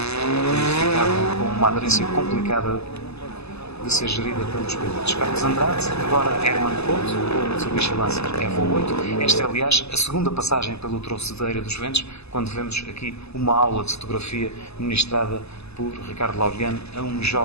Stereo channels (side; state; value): right; late; 0.79 ms